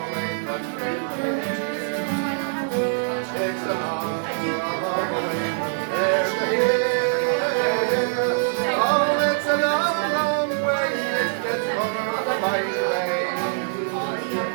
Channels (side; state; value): left; silent; digital silence